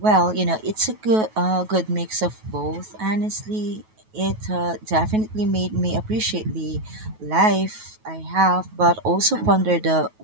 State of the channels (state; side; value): late; left; 9.3 ms